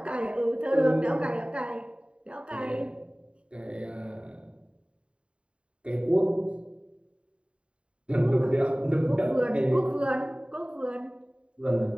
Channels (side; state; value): left; late; 0.057 ms